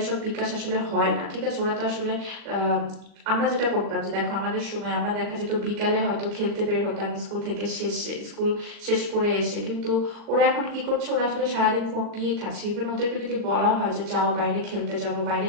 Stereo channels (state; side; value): late; left; 39 ms